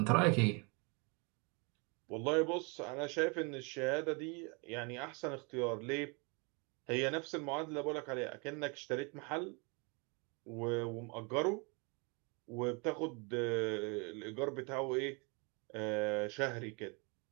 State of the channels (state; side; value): quieter; left; 32.1 dB